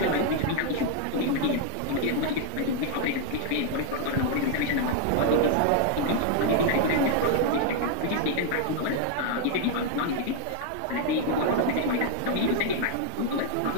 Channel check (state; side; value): different; both; correlation 0.00